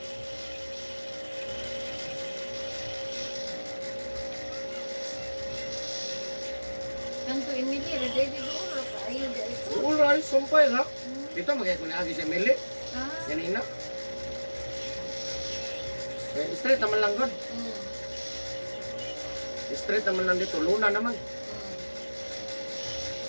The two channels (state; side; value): inverted; both; correlation -1.00